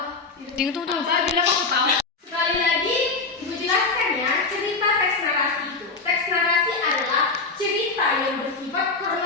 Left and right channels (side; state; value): right; quieter; 4.0 dB